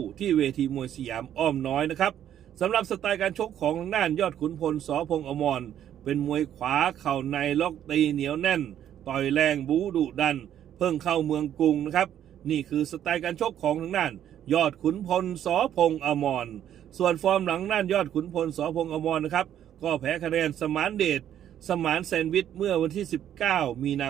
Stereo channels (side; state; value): left; quieter; 10.6 dB